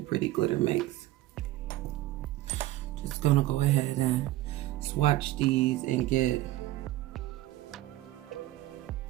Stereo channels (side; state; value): left; quieter; 15.9 dB